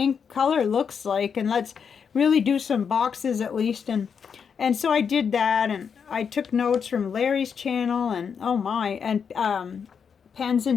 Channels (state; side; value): quieter; right; 6.7 dB